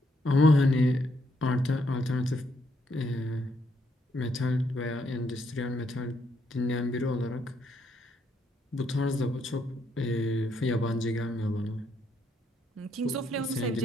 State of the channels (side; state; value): both; normal; correlation 0.74